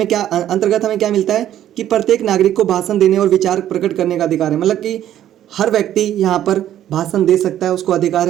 हमें क्या मिलता है कि प्रत्येक नागरिक को भाषण देने और विचार प्रकट करने का अधिकार है। मतलब कि हर व्यक्ति यहाँ पर भाषण दे सकता है, उसको अधिकार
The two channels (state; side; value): quieter; left; 11.7 dB